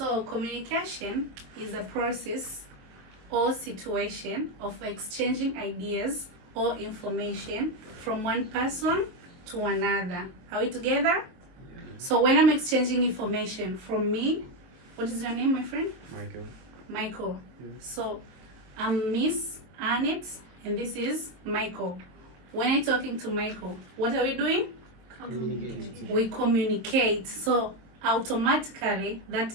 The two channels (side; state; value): left; late; 22 ms